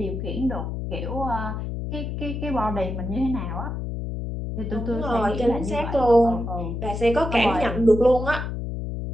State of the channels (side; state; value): left; noise; hum, 4 dB below the sound